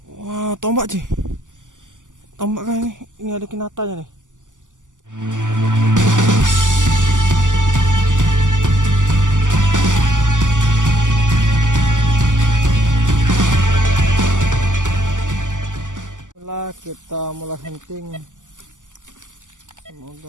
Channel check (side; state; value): left; late; 0.87 ms